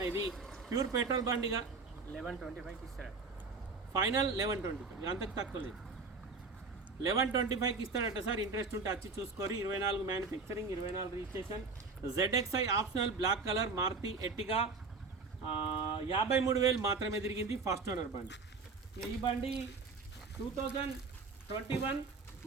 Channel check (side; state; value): left; quieter; 4.3 dB